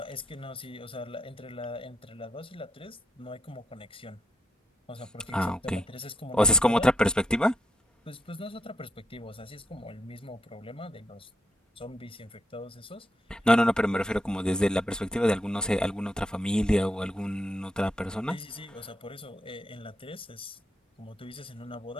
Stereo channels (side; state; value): both; normal; correlation 0.79